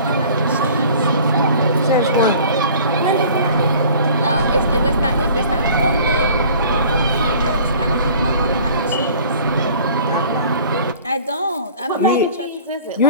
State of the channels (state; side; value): inverted; both; correlation -0.48